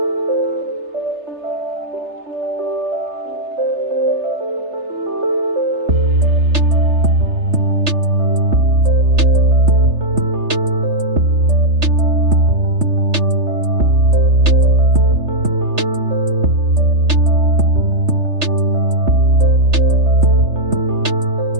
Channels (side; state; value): left; late; 3.3 ms